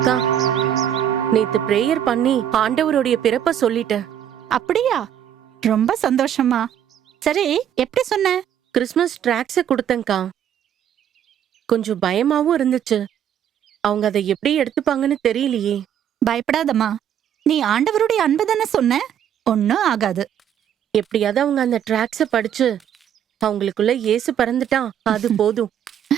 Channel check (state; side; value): quieter; left; 9.7 dB